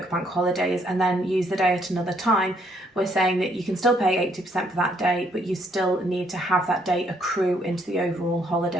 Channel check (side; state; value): both; normal; correlation 0.69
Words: bank holidays and then use the day at another time, we're saying that you can still pay 80% for that day, but you still need to have that day accrue into the overall